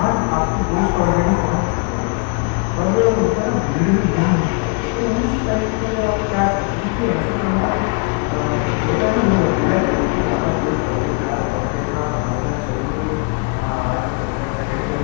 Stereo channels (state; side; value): quieter; right; 32.4 dB